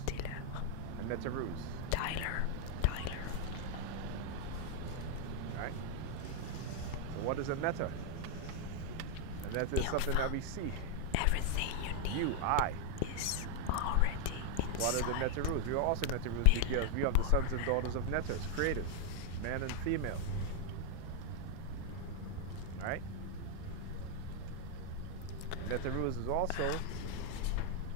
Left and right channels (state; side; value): different; both; correlation 0.00